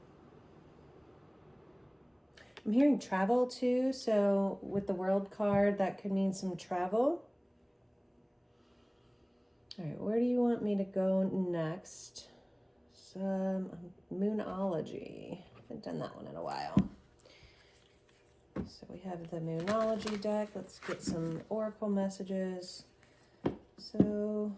I'm hearing travel too. So with the World card, that could mean some travel. All right, where do you want me to go next? Some Moonology. I haven't done that one in a while. So we have the Moonology deck. Let's get some Oracle messages. So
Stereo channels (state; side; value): identical; both; correlation 1.00